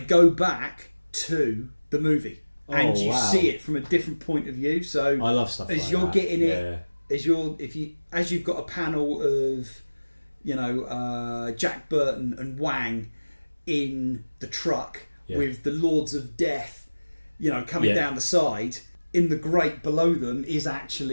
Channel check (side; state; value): both; inverted; correlation -1.00